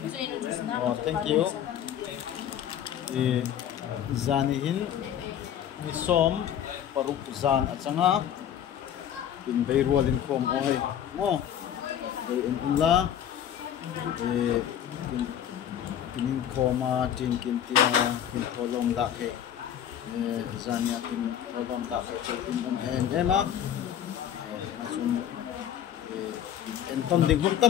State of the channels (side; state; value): right; quieter; 9.9 dB